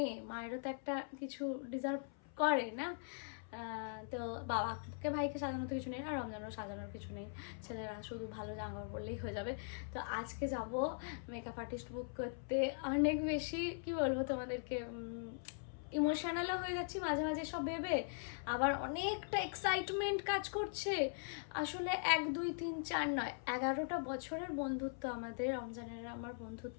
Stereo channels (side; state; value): right; silent; 50 dB below the other